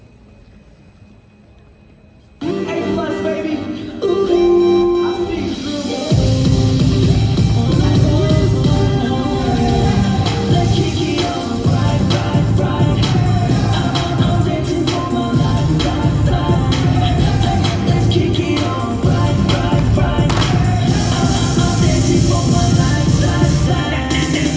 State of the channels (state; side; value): identical; both; correlation 1.00